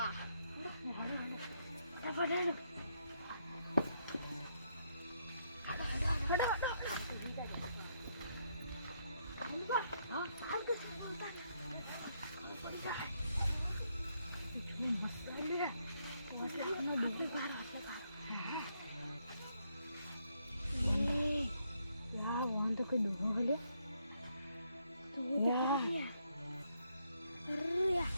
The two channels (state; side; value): inverted; both; correlation -0.76